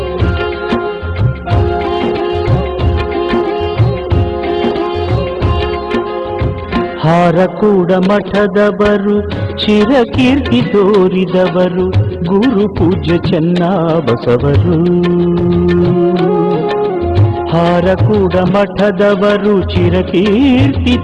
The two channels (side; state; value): both; identical; correlation 1.00